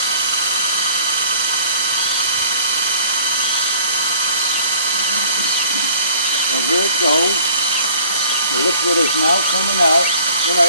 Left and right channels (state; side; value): inverted; both; correlation -0.50